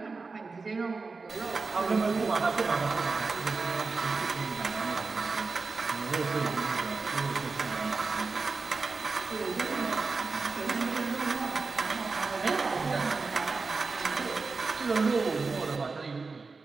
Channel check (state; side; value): quieter; left; 4.2 dB